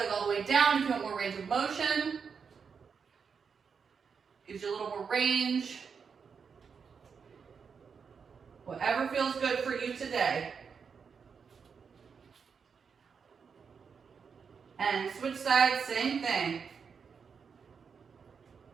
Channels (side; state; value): left; quieter; 6.1 dB